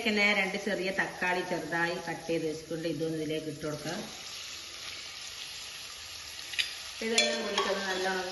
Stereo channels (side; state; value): both; identical; correlation 1.00